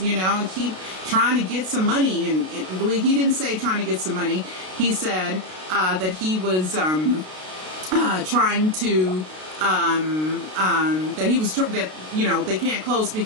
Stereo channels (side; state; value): left; late; 32 ms